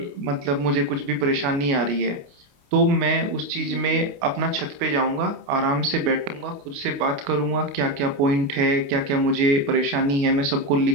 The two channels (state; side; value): late; left; 28 ms